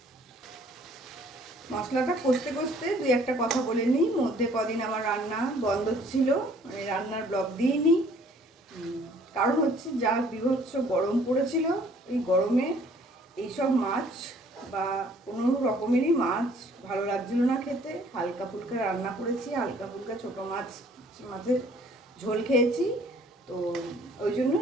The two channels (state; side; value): normal; both; correlation 0.58